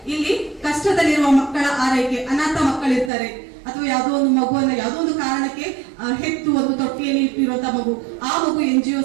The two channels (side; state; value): left; drops out; at 3.1 s